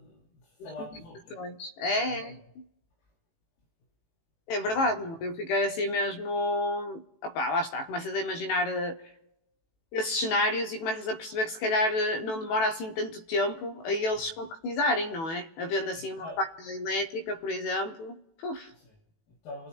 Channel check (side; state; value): right; late; 18 ms